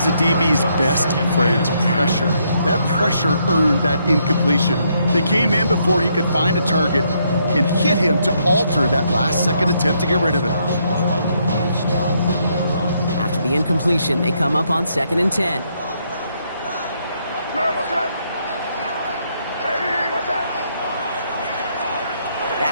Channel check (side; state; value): both; inverted; correlation -0.74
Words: a DB's best friend, pressure. That pressure earned that incompletion. They came in before he could find a target and hit him to alter that last-second attempt to get rid of it. After the incompletion, they come up on 2nd and 10.